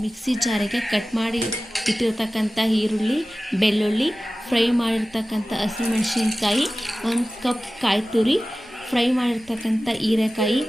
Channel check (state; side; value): normal; both; correlation 0.96